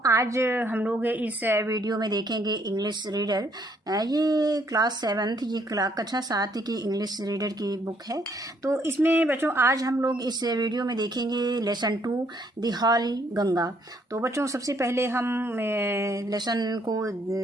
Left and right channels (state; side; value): normal; both; correlation 0.68